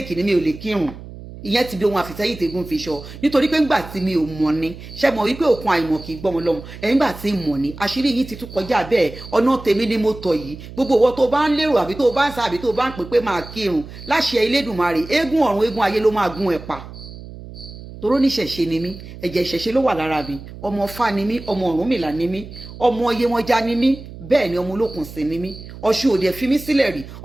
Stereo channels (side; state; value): right; noise; hum, 14 dB below the sound